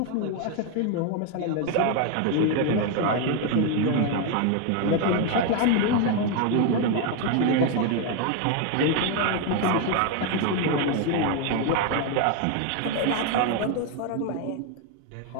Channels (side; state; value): both; different; correlation 0.01